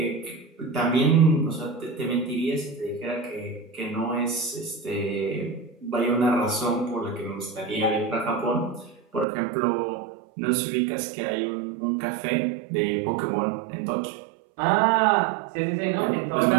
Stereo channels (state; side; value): drops out; left; at 9.2 s